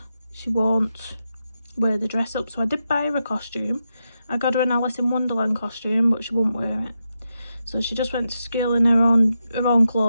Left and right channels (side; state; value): both; inverted; correlation -0.87